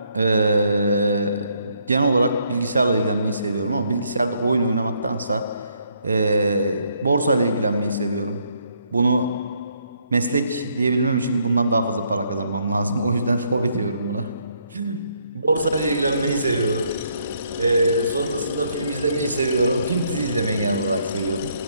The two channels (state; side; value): inverted; both; correlation -0.71